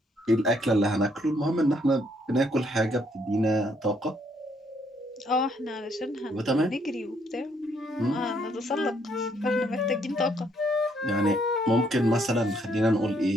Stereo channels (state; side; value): normal; both; correlation 0.70